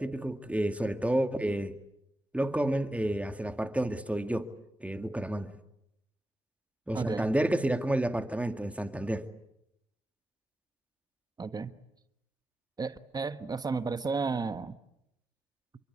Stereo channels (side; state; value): both; normal; correlation 0.91